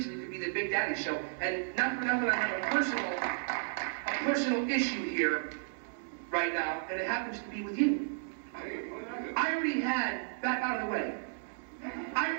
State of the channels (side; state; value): left; silent; digital silence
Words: could be the Big Daddy Show. And not for nothing, I have a personal issue here right now, and it happens to be with you. I already had, back out of the way, I